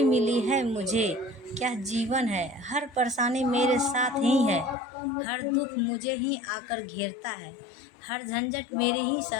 मिली है मुझे, क्या जीवन है। हर परेशानी मेरे साथ ही है, हर दुख मुझे ही आकर घेरता है, हर झंझट मेरे ही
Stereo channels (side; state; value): right; drops out; at 4.8 s